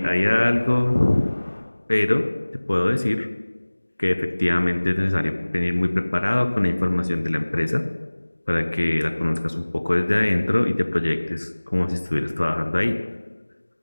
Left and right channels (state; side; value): inverted; both; correlation -1.00